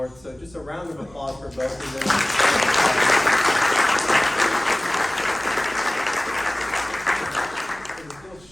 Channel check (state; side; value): noise; right; rumble, 25 dB below the sound